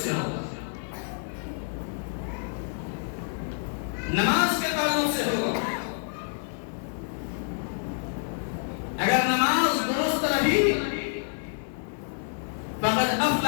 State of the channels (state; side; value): silent; right; digital silence